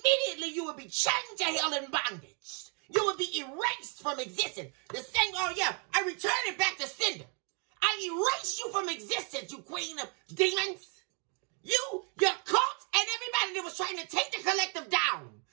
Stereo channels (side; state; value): left; quieter; 37.8 dB